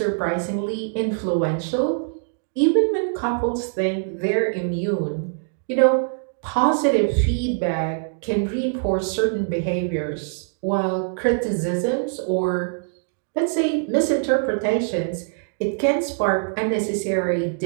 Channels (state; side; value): silent; left; digital silence